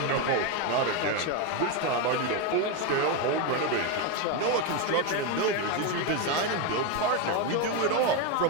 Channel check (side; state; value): both; different; correlation 0.03